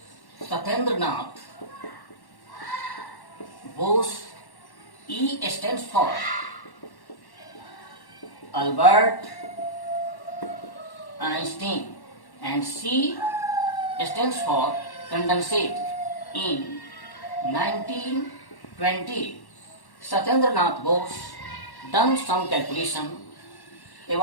Satyendranath Bose. E stands for Albert Einstein, and C stands for condensate. In 1920, Satyendranath Bose done some calculation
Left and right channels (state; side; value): late; right; 1.1 ms